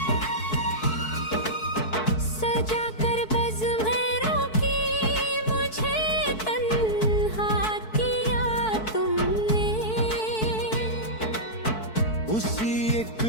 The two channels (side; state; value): right; late; 4.6 ms